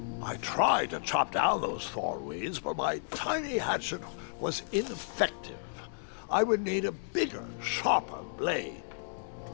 I tried to chop down those thornweeds, but my tiny hatchet was ineffective. I would need a bigger, sharper blade.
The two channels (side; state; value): right; silent; digital silence